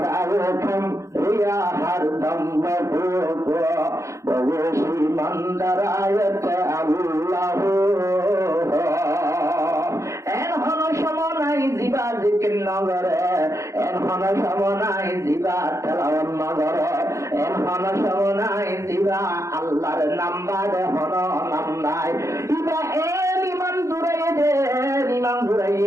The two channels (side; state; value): left; late; 0.15 ms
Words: রেখম রিয়া হরদম ববেশি মন্দার আয়তে আল্লাহ এন হন সমনাই জিবা জিকির নগরে এন হন সমনাই জিবা তেলাওয়াত নগরে এন হন সমনাই জিবা আল্লাহর নাম্বার হন নাম নাই ইবা এন ইমান